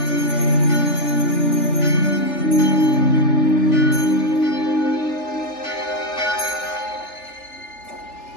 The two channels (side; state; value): right; late; 3.4 ms